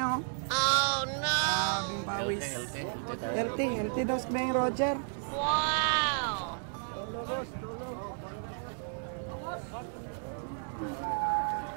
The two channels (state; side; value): silent; left; 56 dB below the other